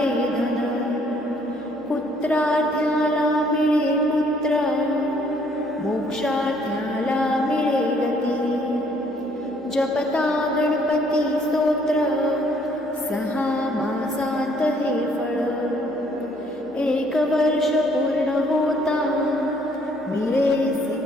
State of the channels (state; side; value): normal; both; correlation 0.64